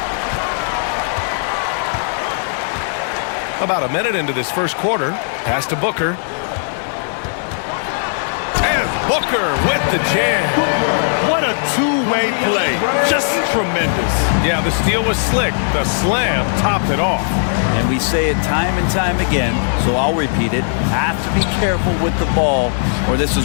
About a minute into this first quarter. Pass to Booker. And Booker with the jam. What a two-way play. Just tremendous. Yeah, the steal was slick. The slam topped it off. And we say it time and time again, so I'll repeat it. Have to be careful with the ball, or this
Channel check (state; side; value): silent; right; 68 dB below the other